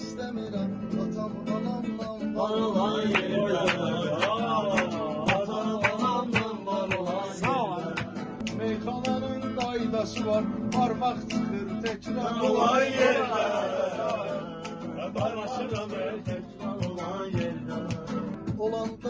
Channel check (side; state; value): both; identical; correlation 1.00